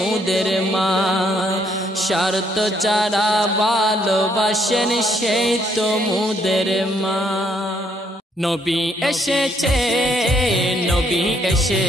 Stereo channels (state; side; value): normal; both; correlation 0.70